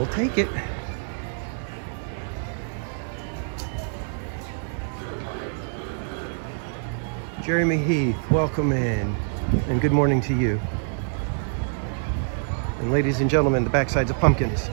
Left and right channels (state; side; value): silent; left; digital silence